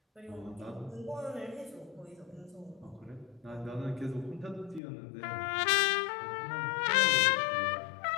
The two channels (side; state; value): right; drops out; at 4.8 s